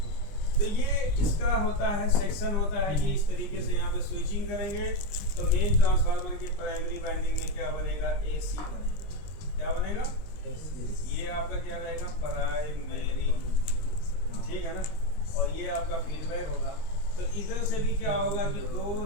तो ये इसका होता है सेक्शन होता है, ये इस तरीके से यहाँ पे स्विचिंग करेंगे तो मेन ट्रांसफार्मर की प्राइमरी वाइंडिंग में क्या बनेगा, एसी बनेगा। क्या बनेगा, ये आपका क्या रहेगा, प्राइमरी, ठीक है ना। और ये आपका फीडबैक होगा। तो इधर से भी क्या होगा कि दो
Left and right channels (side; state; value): right; late; 20 ms